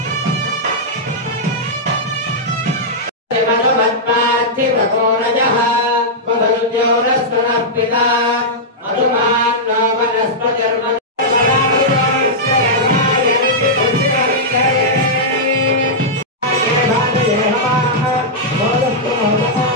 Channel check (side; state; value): both; normal; correlation -0.09